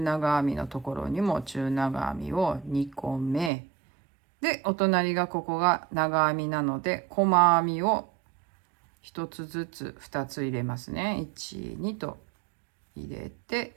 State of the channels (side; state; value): left; drops out; at 3.5 s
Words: 長編みのところにも中長編みを2個目で、お隣がここが長編みなので、細編みを1つずつ2つ入れますね。1、2と入れ